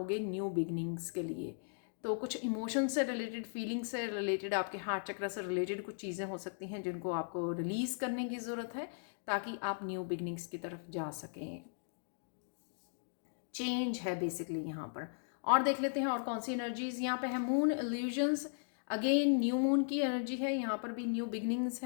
न्यू बिगनिंग्स के लिए। तो कुछ इमोशन से रिलेटेड, फीलिंग से रिलेटेड, आपके हार्ट चक्र से रिलेटेड कुछ चीज़ें हो सकती हैं जिनको आपको रिलीज़ करने की ज़रूरत है ताकि आप न्यू बिगनिंग्स की तरफ जा सकें। चेंज है बेसिकली यहाँ पर। और देख लेते हैं और कौन सी एनर्जीज यहाँ पे है। Moon illusions, again new moon की एनर्जी है, यहाँ पर भी न्यू बिगनिंग्स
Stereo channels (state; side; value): silent; right; digital silence